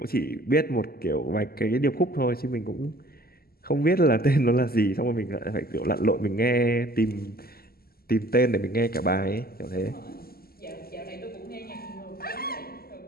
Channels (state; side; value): late; right; 0.44 ms